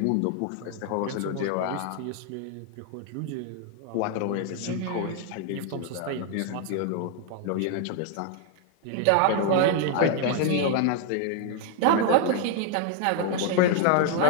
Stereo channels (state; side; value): different; both; correlation 0.00